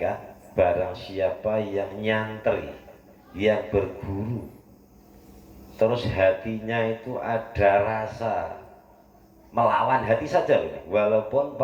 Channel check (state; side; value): identical; both; correlation 1.00